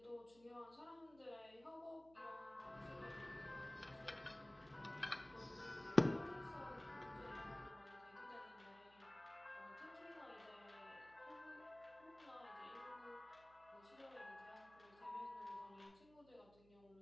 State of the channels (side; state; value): right; noise; hum, 24 dB below the sound